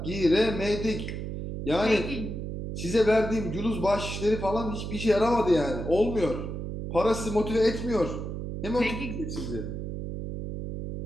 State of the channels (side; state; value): right; noise; hum, 6 dB below the sound